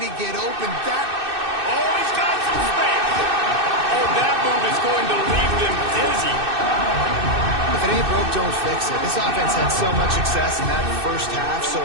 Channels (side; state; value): left; late; 2.6 ms